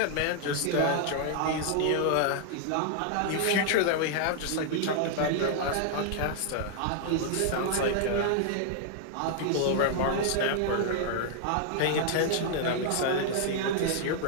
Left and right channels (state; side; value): different; both; correlation -0.01